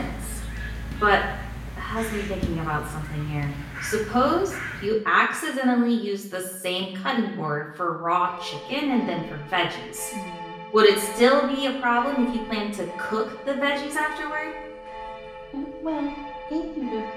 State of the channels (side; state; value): both; identical; correlation 1.00